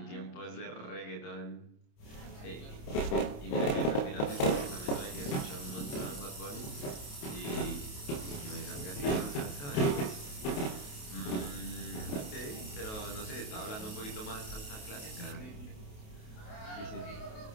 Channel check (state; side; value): late; right; 28 ms